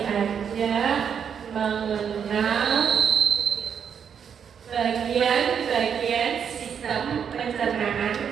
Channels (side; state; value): left; quieter; 7.5 dB